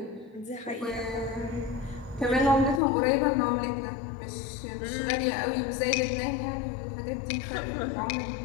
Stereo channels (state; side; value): drops out; right; at 2.8 s